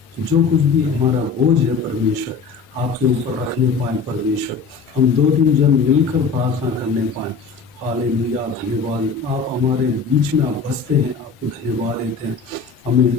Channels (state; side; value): quieter; right; 5.2 dB